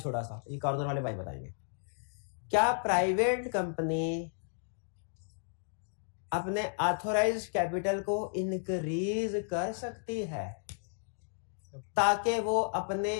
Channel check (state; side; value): silent; right; digital silence